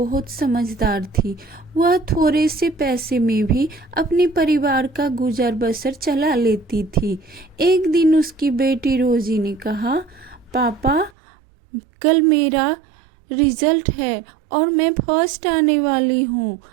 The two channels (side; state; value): left; drops out; at 11.1 s